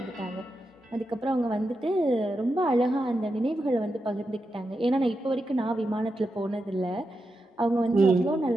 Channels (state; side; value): normal; both; correlation 0.87